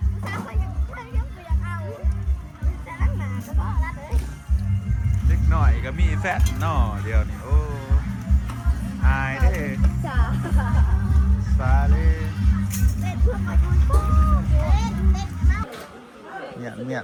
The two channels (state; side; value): identical; both; correlation 1.00